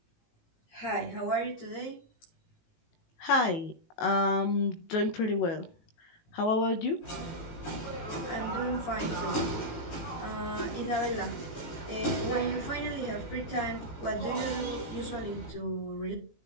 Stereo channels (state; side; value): late; right; 18 ms